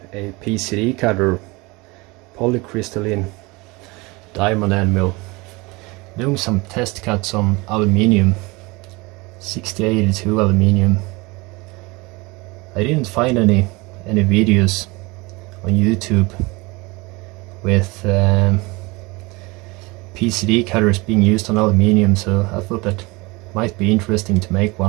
a PCD cutter, polycrystaline diamond end mill. Doing some test cuts on aluminium, 6082 aluminium. I didn't find any videos on YouTube with PCD cutters being used on aluminium, so I thought that might be interesting to make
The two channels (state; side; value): quieter; left; 24.6 dB